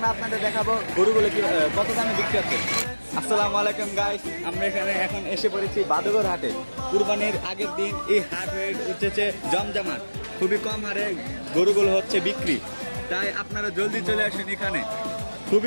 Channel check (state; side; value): inverted; both; correlation -1.00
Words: আপনাদের দেখাবো গরুগুলো কি কত দামে বিক্রি হচ্ছে। আসসালামু আলাইকুম গাইস, আমরা এখানে এখন এসে পড়েছি বাদুঘর হাটে। কুরবানির আগের দিন এই হাট হয়ে উঠেছে জমজমাট, খুবই কম হারে গরুগুলো হচ্ছে বিক্রি, তাই আপনারা জলদি চলে আসেন। এখানে